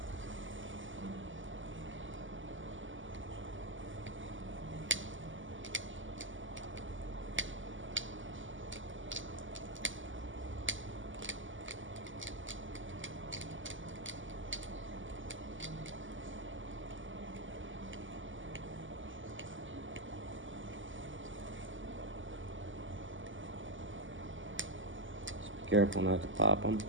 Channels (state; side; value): late; left; 0.56 ms